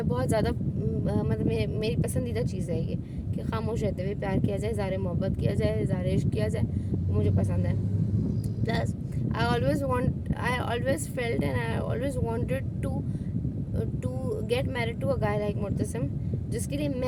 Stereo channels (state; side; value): identical; both; correlation 1.00